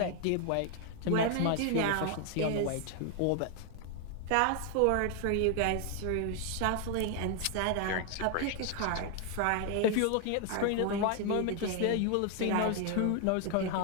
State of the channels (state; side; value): different; both; correlation 0.00